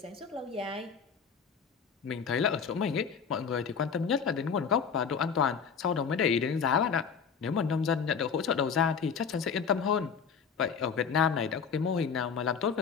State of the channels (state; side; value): quieter; right; 6.4 dB